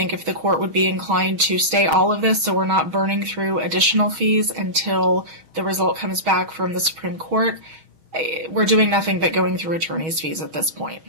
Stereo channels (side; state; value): left; late; 6.3 ms